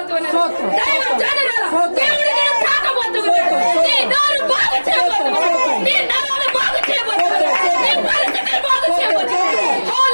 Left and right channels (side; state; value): both; inverted; correlation -1.00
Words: దైవ జనరాల దేవుడు నేను తాకబోతున్నాడు. నీ నోరు బాగు చేయబోతున్నాడు, నీ నరాలు బాగు చేయబోతున్నాడు, నీ పరిస్థితులు బాగు చేయబోతున్నాడు.